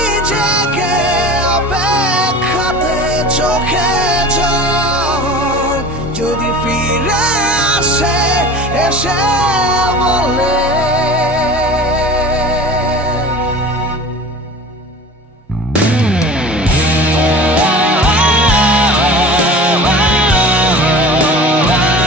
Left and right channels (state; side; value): normal; both; correlation 0.38